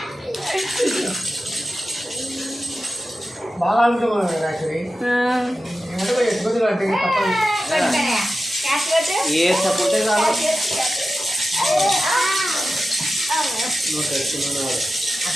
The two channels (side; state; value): both; normal; correlation 0.93